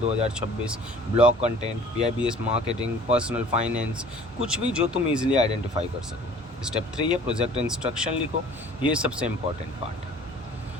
blog content, PIBS marketing, personal finance, कुछ भी जो तुम इजीली आइडेंटिफाई कर सको। स्टेप 3 है प्रोजेक्ट इंस्ट्रक्शन लिखो, ये सबसे इंपॉर्टेंट पार्ट है।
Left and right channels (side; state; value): both; normal; correlation 0.49